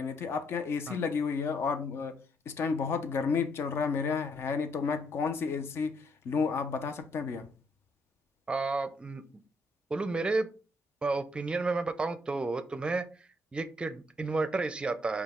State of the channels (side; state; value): both; normal; correlation 0.71